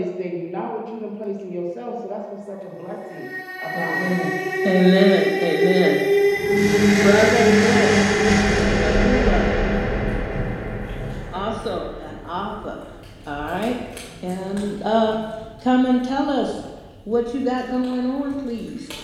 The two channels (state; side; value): identical; both; correlation 1.00